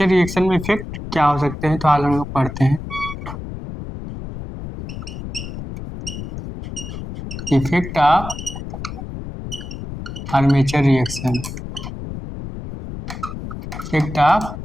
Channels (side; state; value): left; noise; rumble, 9 dB below the sound